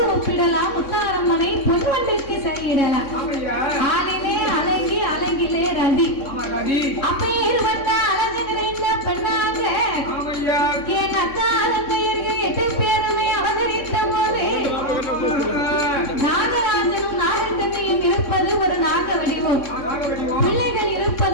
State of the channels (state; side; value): late; right; 3.6 ms